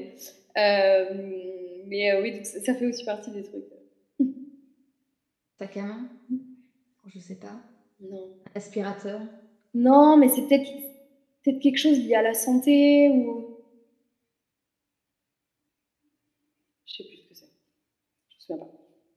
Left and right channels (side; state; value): both; identical; correlation 1.00